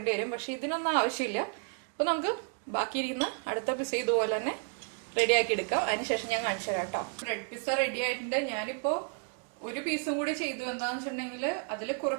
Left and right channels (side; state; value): left; quieter; 40.0 dB